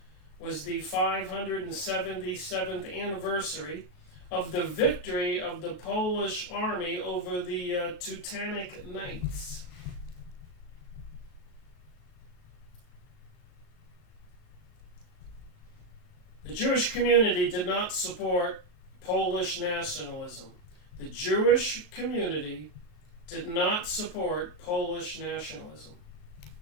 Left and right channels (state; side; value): late; right; 36 ms